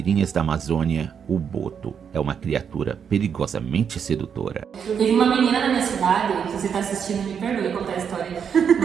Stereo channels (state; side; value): quieter; left; 7.3 dB